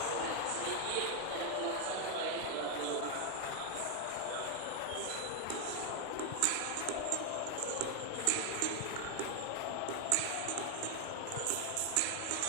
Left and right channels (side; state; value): both; different; correlation 0.00